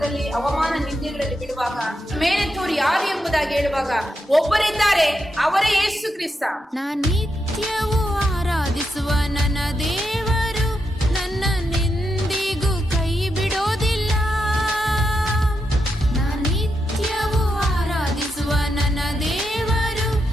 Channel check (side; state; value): both; normal; correlation 0.85